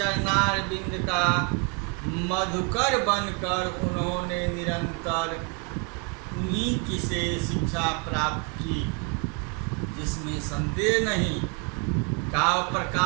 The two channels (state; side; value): quieter; left; 32.8 dB